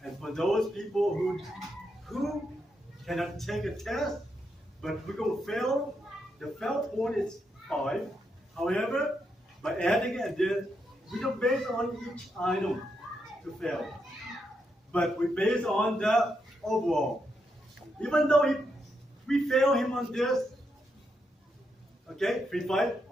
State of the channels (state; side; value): normal; both; correlation 0.81